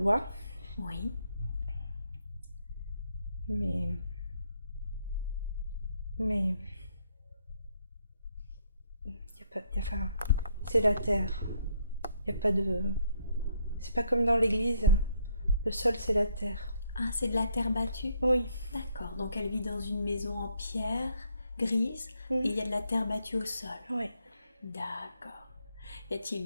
oui. mais enfin, c'est la terre. Il y a pas de. C'est pas comme dans l'église. Le sol, c'est la terre. Ah, c'est de la terre battue? Oui. D'accord, donc elle vit dans une maison en pierre grise et il y a de la terre battue au sol. Oui. D'accord. Y a-t-il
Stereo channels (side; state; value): both; inverted; correlation -0.72